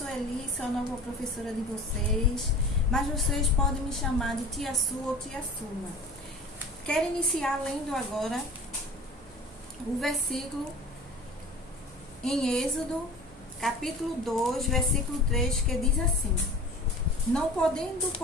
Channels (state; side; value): normal; both; correlation 0.40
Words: sou a nova professora de vocês, mas vocês podem me chamar de Tia Su ou Tia Suma. Quero iniciar lendo agora o versículo em Êxodo, capítulo 2, versículo 3, que diz assim: Não podendo,